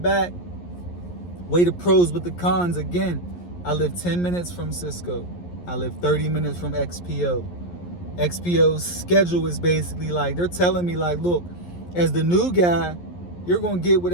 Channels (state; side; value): late; right; 11 ms